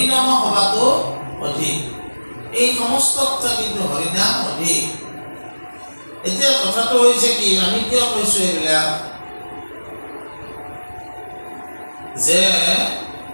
সভাটো অধিক। এই সমস্ততকৈ কিন্তু হৰিনাম অধিক। এতিয়া কথাটো হৈছে কি, আমি কিয় কৈছোঁ এইবিলাক? যে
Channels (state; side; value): inverted; both; correlation -1.00